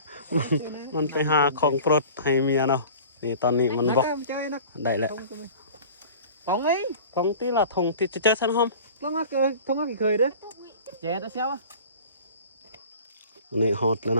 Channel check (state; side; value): inverted; both; correlation -0.42